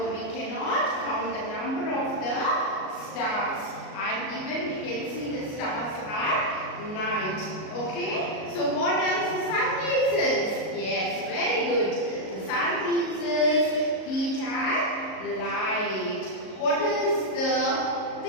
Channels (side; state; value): right; late; 37 ms